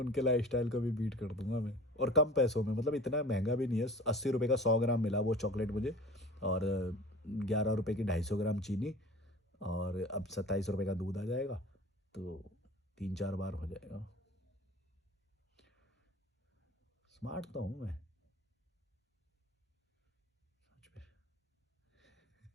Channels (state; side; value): normal; both; correlation 0.40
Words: लाइफस्टाइल को भी बीट कर दूंगा मैं, और कम पैसों में। मतलब इतना महंगा भी नहीं है, 80 रुपये का 100 ग्राम मिला वो चॉकलेट मुझे, और 11 रुपये की 250 ग्राम चीनी, और अब 27 रुपये का दूध आ जाएगा, तो 3-4 बार हो जाएगा। स्मार्ट तो हूँ मैं सच में।